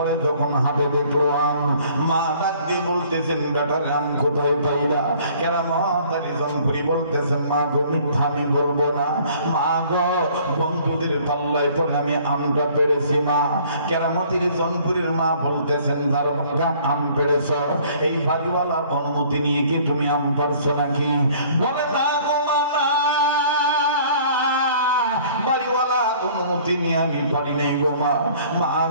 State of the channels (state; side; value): inverted; both; correlation -0.55